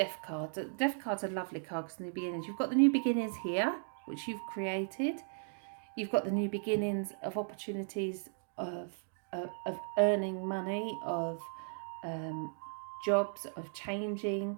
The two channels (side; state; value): left; silent; digital silence